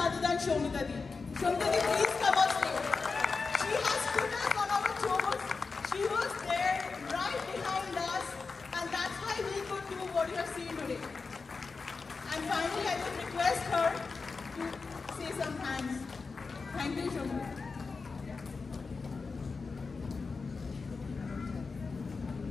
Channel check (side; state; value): right; quieter; 4.5 dB